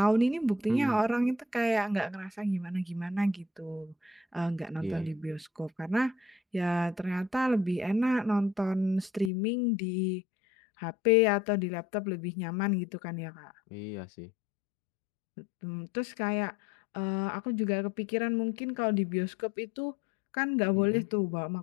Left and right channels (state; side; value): drops out; right; at 9.3 s